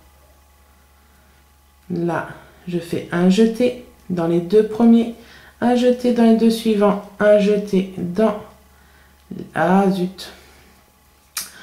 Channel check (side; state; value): both; identical; correlation 1.00